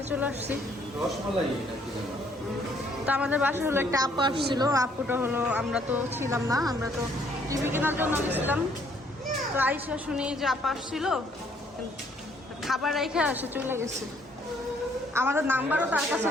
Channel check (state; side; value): normal; both; correlation 0.65